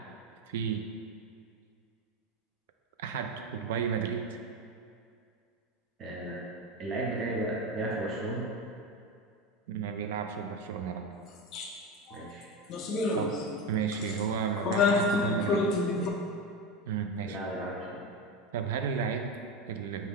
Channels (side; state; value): both; normal; correlation 0.18